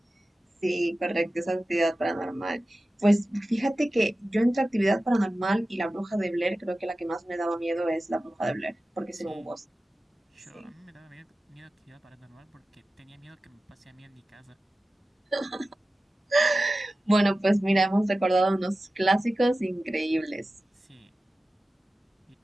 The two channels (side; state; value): both; normal; correlation 0.95